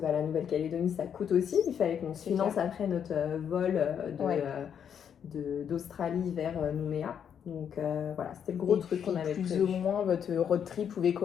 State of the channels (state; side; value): quieter; right; 8.2 dB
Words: Nouvelle-Calédonie ça coûte aussi. Il fallait qu'on se finance après notre vol d'Australie vers Nouméa. Donc voilà, c'était le gros truc qu'on avait plus ou moins votre road trip pouvait